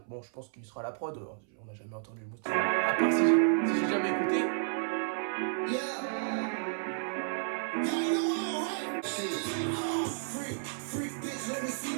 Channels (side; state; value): left; silent; 56 dB below the other